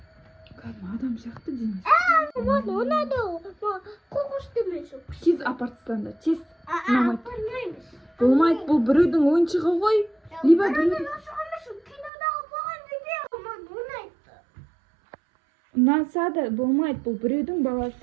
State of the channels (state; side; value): drops out; left; at 12.1 s